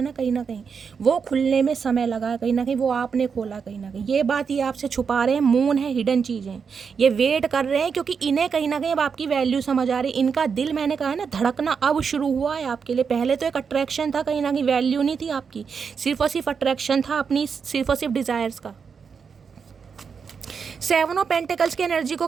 ना कहीं वो खुलने में समय लगा, कहीं ना कहीं वो आपने खोला कहीं ना कहीं। ये बात ये आपसे छुपा रहे हैं, मून है, हिडन चीज़ें, ये वेट कर रहे हैं, क्योंकि इन्हें कहीं ना कहीं अब आपकी वैल्यू समझ आ रही है। इनका दिल, मैंने कहा है ना, धड़कना अब शुरू हुआ है आपके लिए। पहले तो एक अट्रैक्शन था, कहीं ना कहीं वैल्यू नहीं थी आपकी, सिर्फ और सिर्फ अट्रैक्शन था अपनी, सिर्फ और सिर्फ डिज़ायर्स का। 7 ऑफ पेंटिकल्स की एनर्जी को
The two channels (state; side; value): quieter; left; 6.1 dB